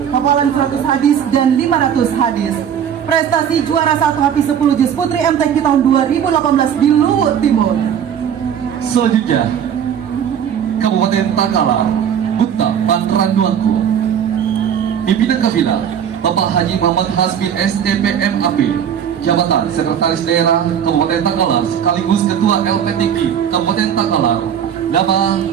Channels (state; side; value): quieter; left; 8.7 dB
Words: hafalan 100 hadis dan 500 hadis. Prestasi juara 1 Hafiz 10 Juz Putri MTQ tahun 2018 di Luwut Timur. Selanjutnya Kabupaten Takalar Gupta Panranduangku. Pimpinan Kafilah Bapak Haji Muhammad Hasbi STPM AP, Jabatan Sekretaris Daerah Kabupaten Takalar sekaligus Ketua LPTQ Kabupaten Takalar. Nama